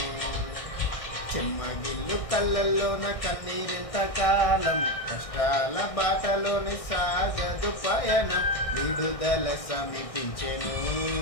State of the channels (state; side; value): late; right; 1.6 ms